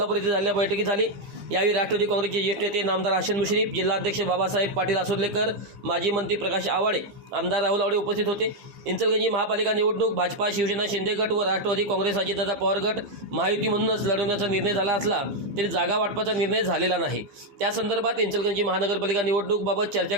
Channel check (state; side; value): late; left; 15 ms